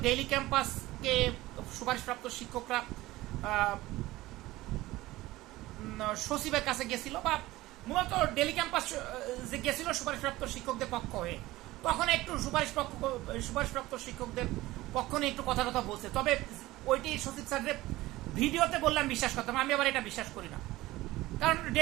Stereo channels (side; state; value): left; quieter; 18.0 dB